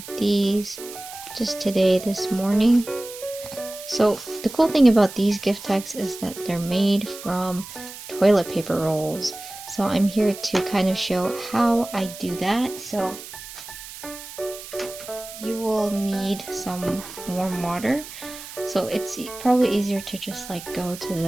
these just today, this morning. So the cool thing about these gift tags is that they're made from toilet paper rolls. So I'm here to kind of show how I do that. So you will need some warm water. So it's probably easier to just like go to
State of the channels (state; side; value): noise; right; hiss, 13 dB below the sound